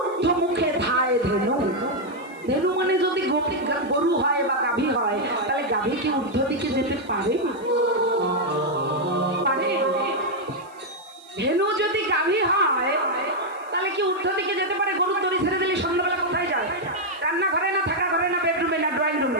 মুখে ধায় ধেনু। ধেনু মানে যদি গরু হয় বা গাভী হয়, তাহলে গাভী কি ঊর্ধ্ব দিকে যেতে পারে? পারে? ধেনু যদি গাভী হয় তাহলে কি ঊর্ধ্ব দিকে যেতে পারে? গরুর দড়ি ছেড়ে দিলে সন্ধ্যাবেলা কোথায় যায়? রান্নাঘরে না, থাকা ঘরে না, বেডরুমে না, ড্রয়িং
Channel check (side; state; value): right; noise; hiss, 29 dB below the sound